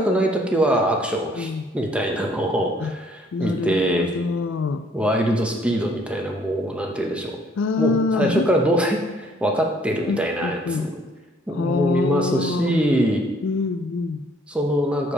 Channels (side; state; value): both; normal; correlation 0.62